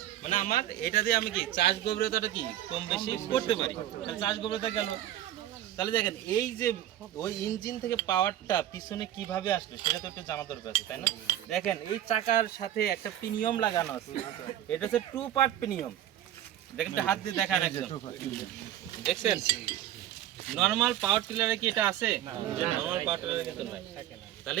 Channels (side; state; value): left; quieter; 12.3 dB